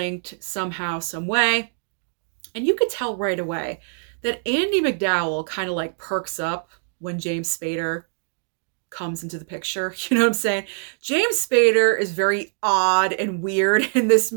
somehow, some way. And you could tell right away that Andie MacDowell kind of like perks up when James Spader comes into the picture. You know what I'm saying? James Spader is very odd and weird in this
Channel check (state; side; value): silent; left; digital silence